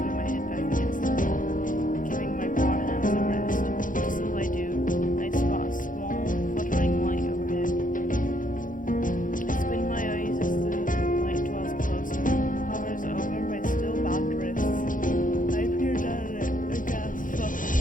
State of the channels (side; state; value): right; late; 0.39 ms